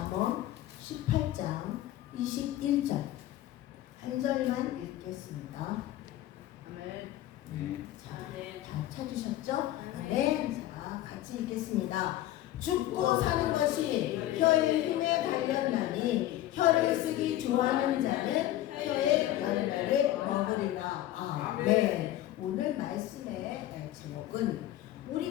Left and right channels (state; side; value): quieter; right; 14.2 dB